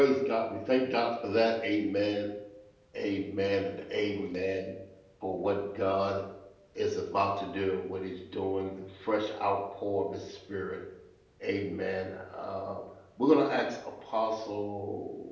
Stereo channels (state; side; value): identical; both; correlation 1.00